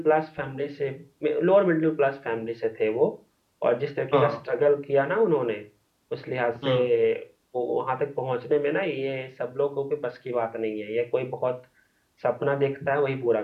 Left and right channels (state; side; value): identical; both; correlation 1.00